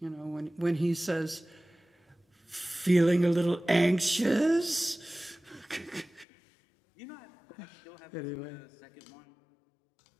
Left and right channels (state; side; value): drops out; right; at 6.2 s